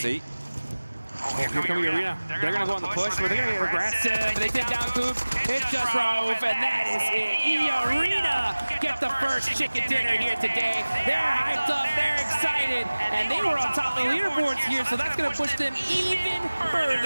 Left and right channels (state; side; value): inverted; both; correlation -1.00